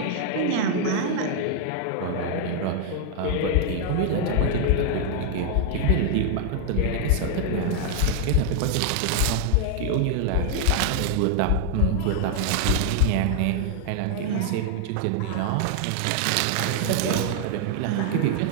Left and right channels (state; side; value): different; both; correlation 0.00